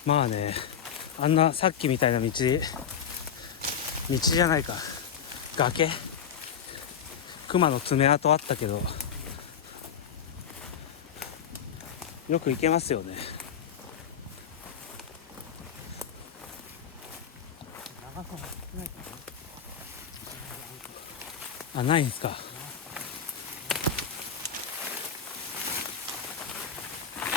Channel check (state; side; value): quieter; right; 7.8 dB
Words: まあね、あんなさっきみたいな道じゃないか。崖熊の爪痕あったけど、よく行けますよね。長さも少ないからね。あ、ないんですか。